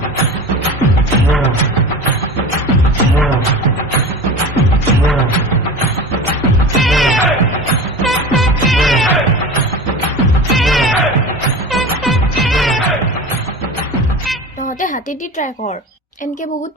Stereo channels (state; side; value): normal; both; correlation 0.32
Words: তহঁতে হাতেদি ট্ৰাই কৰ, এনকে বহুত